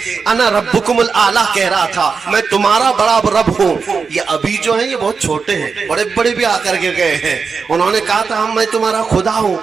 انا ربکم الاعلی کہہ رہا تھا میں تمہارا بڑا رب ہوں. یہ ابھی جو ہیں یہ بہت چھوٹے ہیں, بڑے بڑے بھی آ کر کے گئے ہیں, انہوں نے کہا تھا میں تمہارا خدا ہوں,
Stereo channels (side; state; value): left; quieter; 5.2 dB